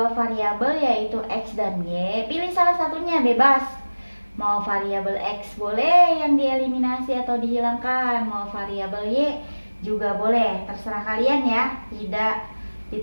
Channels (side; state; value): both; inverted; correlation -1.00